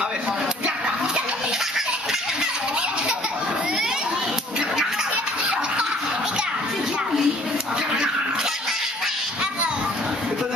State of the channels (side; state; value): both; normal; correlation 0.56